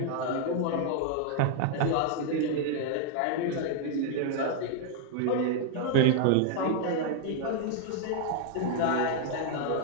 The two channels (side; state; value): both; different; correlation 0.00